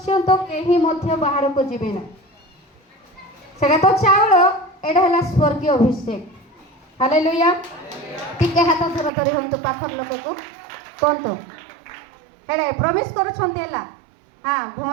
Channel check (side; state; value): left; drops out; at 9.1 s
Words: କେହି ମଧ୍ୟ ବାହାରକୁ ଯିବେ ନା। ସେଟା ତ ଚାଉଳ, ଏଇଟା ହେଲା ସ୍ୱର୍ଗୀୟ ଅଭିଷେକ। ହାଲେଲୁୟା। ଟିକେ ହାତ ଧର ଧରି ହୁଅନ୍ତୁ ପାଖର ଲୋକକୁ କୁହନ୍ତୁ ହେଲେ ପ୍ରବେଶ କରୁଛନ୍ତି ହେଲା। ହଁ